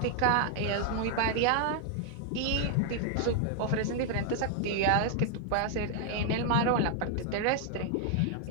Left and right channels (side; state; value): both; different; correlation 0.00